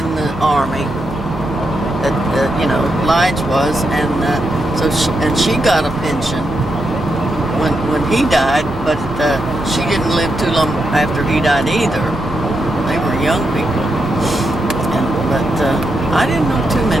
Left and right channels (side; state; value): both; normal; correlation 0.84